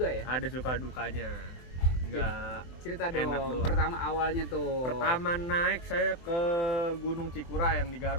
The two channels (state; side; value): late; right; 23 ms